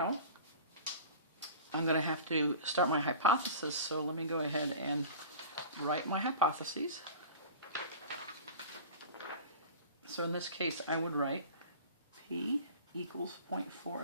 I'm going to have to start my hypothesis, so let me go ahead and write my hypotheses. So in this case, I would write P equals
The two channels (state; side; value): inverted; both; correlation -0.38